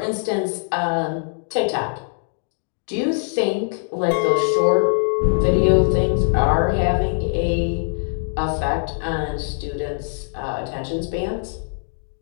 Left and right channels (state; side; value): silent; right; digital silence